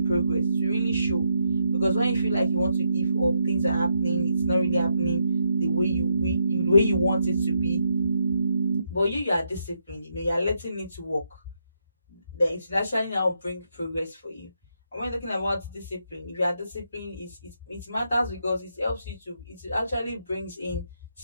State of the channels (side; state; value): both; inverted; correlation -0.79